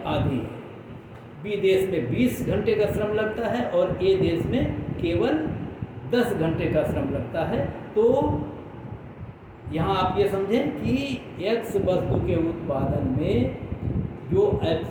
आधी है। बी देश में 20 घंटे का श्रम लगता है और ए देश में केवल 10 घंटे का श्रम लगता है। तो यहाँ आप ये समझें कि एक्स वस्तु के उत्पादन में जो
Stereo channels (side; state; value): both; identical; correlation 1.00